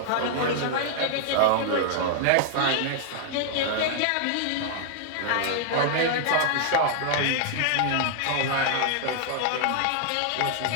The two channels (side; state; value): both; different; correlation -0.01